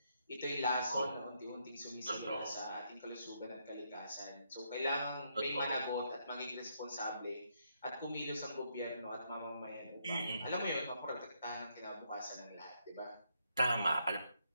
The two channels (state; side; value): inverted; both; correlation -0.76